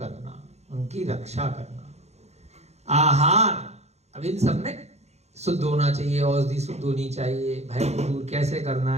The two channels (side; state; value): left; late; 0.31 ms